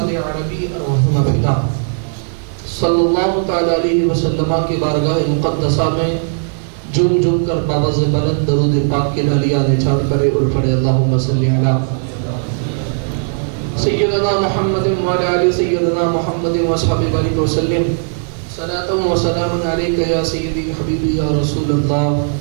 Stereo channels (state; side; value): silent; left; digital silence